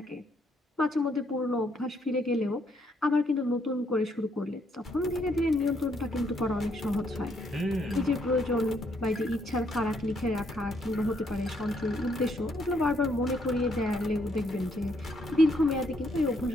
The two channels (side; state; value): both; normal; correlation 0.72